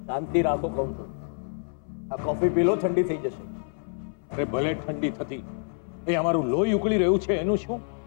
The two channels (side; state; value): right; silent; 60 dB below the other